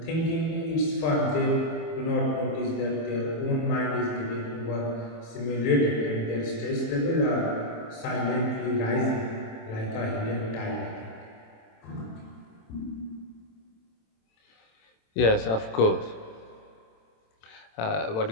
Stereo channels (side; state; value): right; late; 27 ms